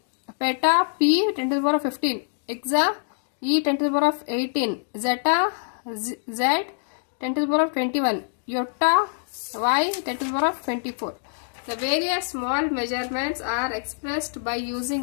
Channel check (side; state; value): right; silent; digital silence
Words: Peta, P, 10 to the power of 15. Exa, E, 10 to the power of 18. Zeta, Z, 10 to the power of 21. Iota, Y, 10 to the power of 24. The various small measurements are expressed by